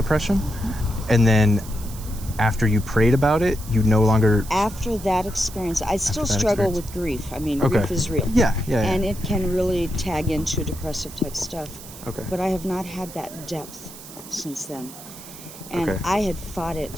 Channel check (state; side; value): noise; right; hiss, 16 dB below the sound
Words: and then after you prayed about it, you no longer... After that experience, I still that struggle experience. with grief. I mean, Okay. grief is real. Yeah. And it can really tag into depressive type stuff. Okay. But I have not had that depth since then. And Okay. I had fought